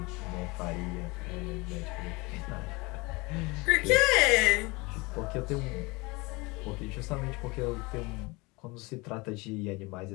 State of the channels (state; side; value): quieter; right; 25.1 dB